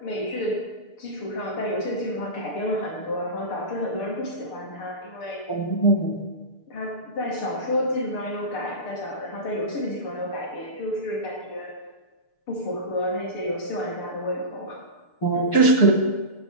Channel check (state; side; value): late; right; 6.7 ms